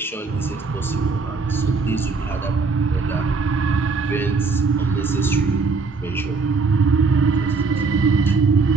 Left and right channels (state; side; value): quieter; left; 4.4 dB